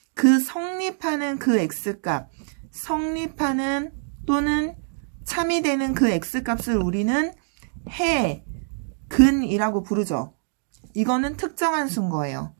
그 성립하는 그 x값, 성립하는 또는 참이 되는 그 x값을 우리는 해, 근이라고 부르죠. 이거는 특정한 수인 거예요.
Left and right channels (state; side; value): silent; left; digital silence